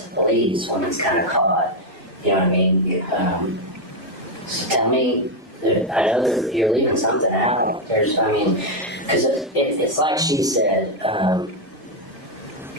to police when it's kind of caught. You know what I mean? So tell me, I know that you're leaving something out. Because it's like she said,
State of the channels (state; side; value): normal; both; correlation 0.03